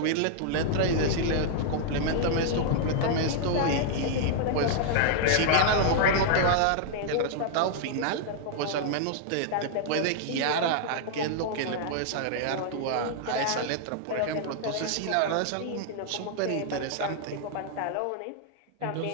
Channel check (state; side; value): different; both; correlation -0.01